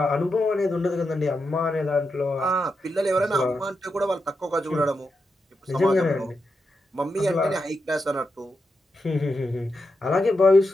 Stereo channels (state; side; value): normal; both; correlation 0.86